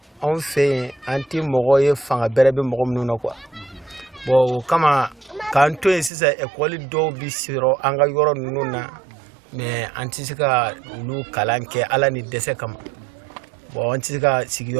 on fait anti mogoye fanga berebe mogo munu quoi. Bon kama kanto sisa école do bi siro anga yoro nuna mais antisika lu kalanke ala ni dese kama bon antisika sigi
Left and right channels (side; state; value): left; drops out; at 6.1 s